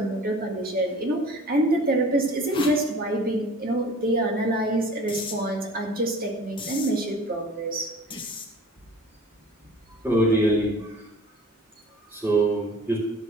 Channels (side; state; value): both; normal; correlation 0.45